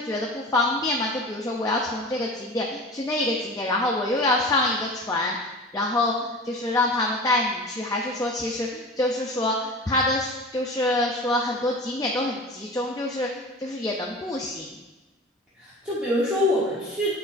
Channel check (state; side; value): normal; both; correlation 0.36